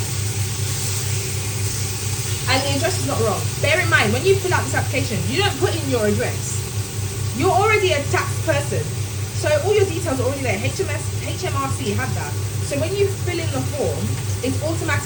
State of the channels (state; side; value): identical; both; correlation 1.00